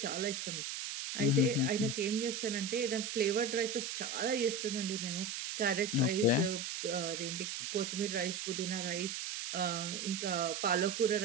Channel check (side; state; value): right; noise; hiss, 4 dB below the sound